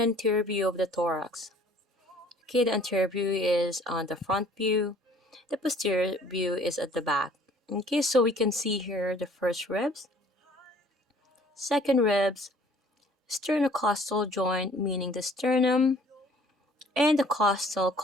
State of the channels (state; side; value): normal; both; correlation 0.54